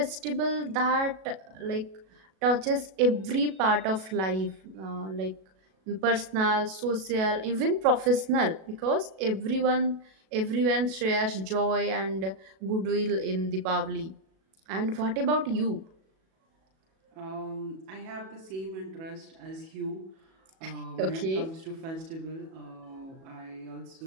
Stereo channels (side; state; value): left; late; 37 ms